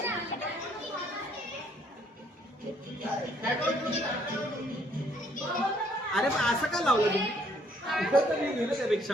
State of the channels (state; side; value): normal; both; correlation 0.66